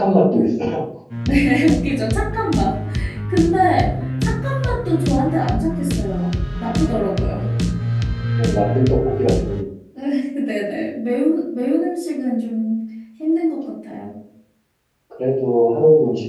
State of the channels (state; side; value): identical; both; correlation 1.00